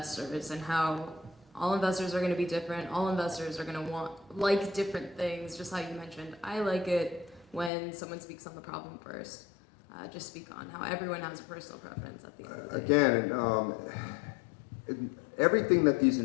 and how all investors are going to be different? All investors are going to like different things, just how you mentioned. I like it when someone speaks on the problem first. Just speak on how everyone has a personal preference at the end of the day. Again, everything that these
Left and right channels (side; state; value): right; drops out; at 7.7 s